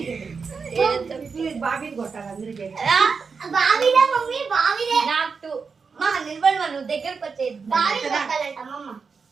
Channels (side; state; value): left; quieter; 5.2 dB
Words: బాబీని కొట్టాలి అందరికీ. నాకు మా నిలబడి నువ్వు దగ్గరకు వచ్చేది